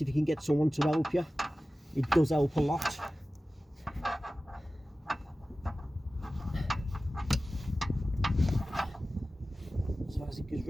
If you can get someone to help you, it does help a lot. So as it goes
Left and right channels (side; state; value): both; normal; correlation 0.96